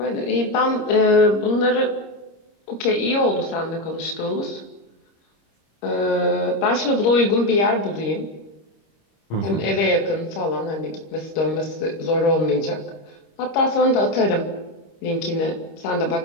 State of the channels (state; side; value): late; right; 26 ms